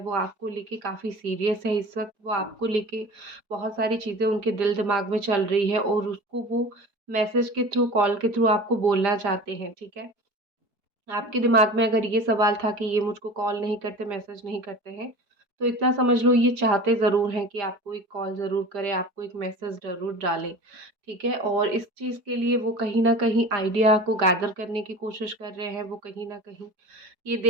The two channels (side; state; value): left; late; 4.7 ms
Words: आपको लेके काफ़ी सीरियस है इस वक्त। वो आपको लेके बहुत सारी चीज़ें उनके दिल दिमाग में चल रही है और उसको वो मैसेज के थ्रू, कॉल के थ्रू आपको बोलना चाहते हैं, ठीक है। आपके दिमाग में अगर ये सवाल था कि ये मुझको कॉल नहीं करते, मैसेज नहीं करते हैं, तो इतना समझ लो ये चाहते ज़रूर हैं कि आपको एक कॉल ज़रूर करें, आपको एक मैसेज ज़रूर डालें, ठीक है। और इस चीज़ के लिए वो कहीं न कहीं आइडिया को गैदर करने की कोशिश कर रहे हैं। वो कहीं न कहीं ये